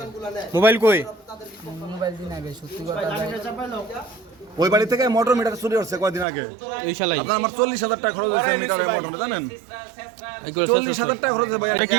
মোবাইল কই? মোবাইল দিই নাই ভাই, সত্যি কথা ভাই। ওই বাড়ি থেকে মোটর মিটার চুরি করছে কয়দিন আগে। এই শালাই আপনার আমার 40,000 টাকা খরচ হয়েছে মিটারের মোটরে, জানেন? এগুলো 40,000 টাকা খরচ হয়েছে ভাই। এটা কি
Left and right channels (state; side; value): drops out; left; at 6.2 s